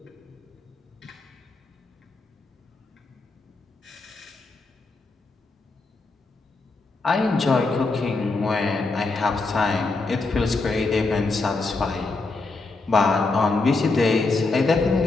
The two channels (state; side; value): quieter; right; 3.6 dB